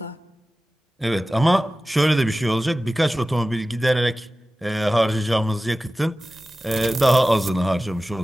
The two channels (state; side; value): normal; both; correlation 0.96